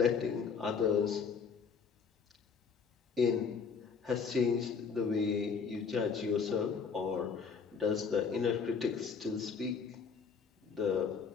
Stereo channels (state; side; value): quieter; right; 5.8 dB